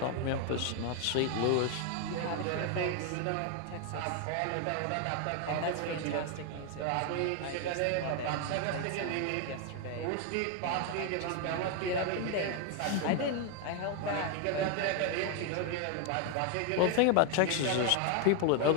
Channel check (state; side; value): different; both; correlation 0.01